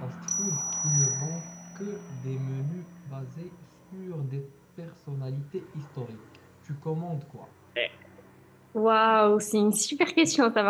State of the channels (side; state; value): both; identical; correlation 1.00